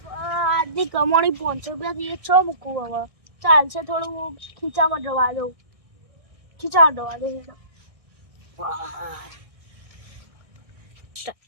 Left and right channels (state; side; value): late; left; 1.6 ms